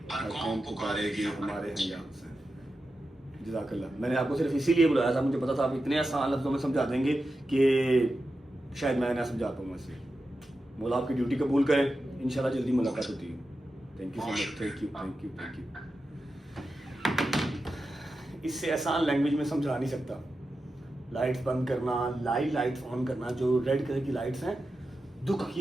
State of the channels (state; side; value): normal; both; correlation 0.91